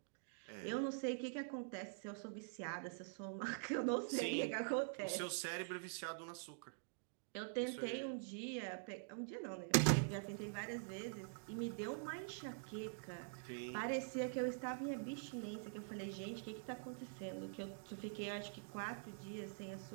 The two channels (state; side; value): silent; left; digital silence